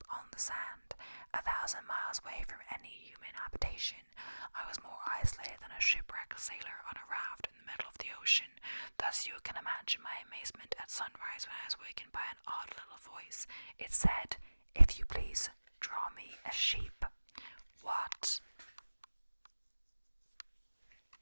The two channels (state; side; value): inverted; both; correlation -1.00